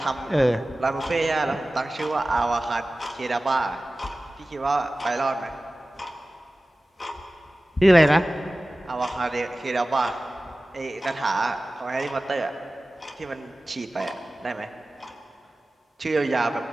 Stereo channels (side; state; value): both; normal; correlation 0.97